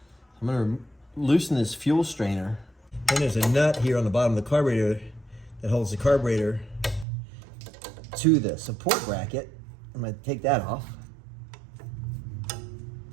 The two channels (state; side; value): drops out; left; at 7.1 s